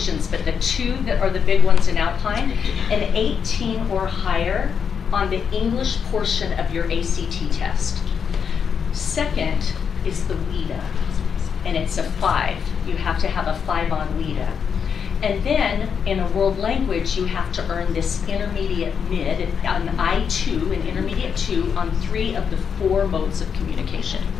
but the 2 that are the big ones in Alpine, an 18 or higher on the English portion of your ACT test. Second is the WIDA, and it's a 5. You have to have a 5 on WIDA. And then in a world language, you have to earn this intermediate mid, an I2, an intermediate 2 on 3 of the 4 modes of communication.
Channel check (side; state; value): right; quieter; 6.9 dB